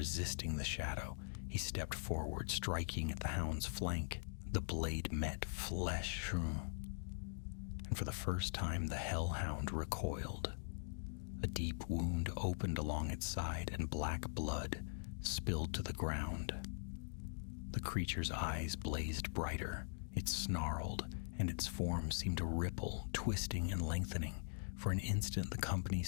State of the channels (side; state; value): right; silent; digital silence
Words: the shadow. He stepped forward, striking at the hound's flank. The blade met flesh, and for the first time the Hellhound recoiled. A deep wound opened along its side, and black blood spilled to the ground. The creature's eyes blazed brighter. It snarled, and its form seemed to ripple, twisting and lengthening. For an instant the company